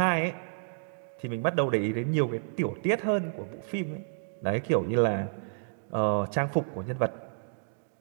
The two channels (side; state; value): left; silent; digital silence